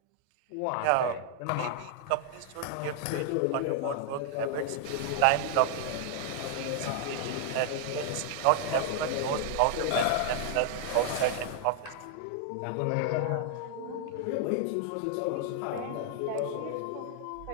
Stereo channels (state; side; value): different; both; correlation 0.00